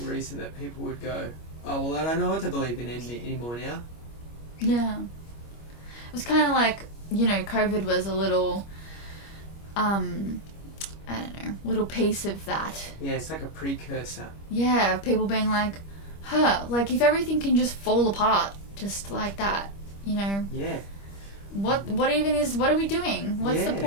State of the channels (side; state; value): right; late; 25 ms